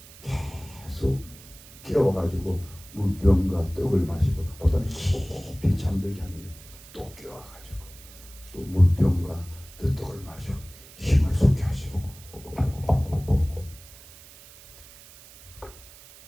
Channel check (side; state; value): right; noise; hiss, 20 dB below the sound